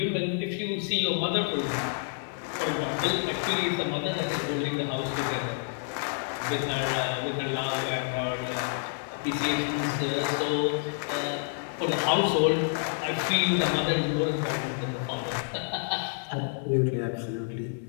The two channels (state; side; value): silent; right; 59 dB below the other